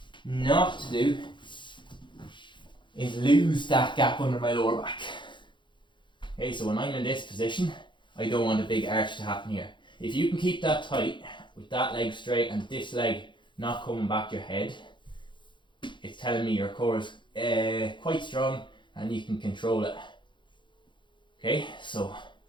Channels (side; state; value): right; late; 0.23 ms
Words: not to do is lose that gap under my lower back. Okay, so when I'm in this position, I don't want a big arch to happen here. If you can keep that tight with that leg straight and this leg not coming back your head, it's telling me your core is quite strong and you can control it. Okay, so I'm